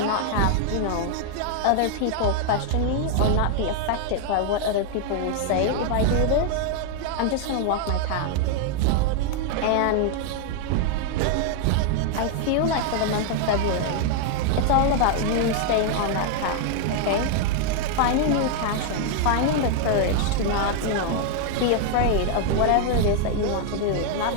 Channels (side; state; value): both; different; correlation 0.00